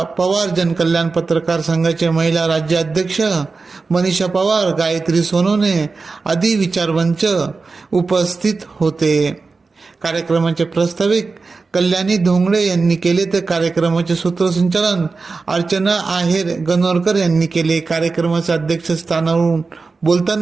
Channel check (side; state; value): left; quieter; 4.2 dB